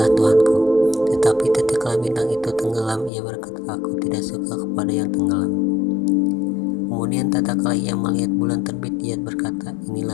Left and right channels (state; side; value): drops out; right; at 3.1 s